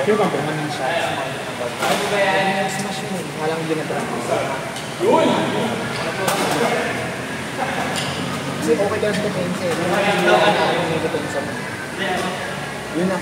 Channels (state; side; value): identical; both; correlation 1.00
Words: Sure bang kung anong shots? Smash yun. Walang ginagawa. Kasi okay ka lang sa defense eh. Yung may defense mo. Yun na,